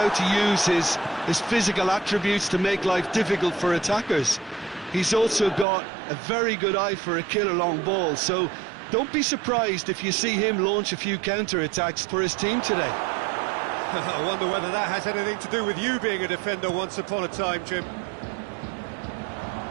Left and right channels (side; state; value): left; drops out; at 5.7 s